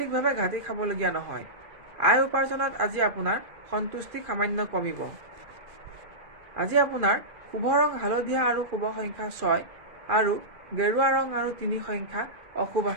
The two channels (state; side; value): late; left; 2.4 ms